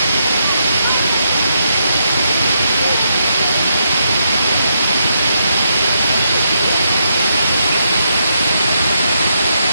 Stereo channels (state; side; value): inverted; both; correlation -0.80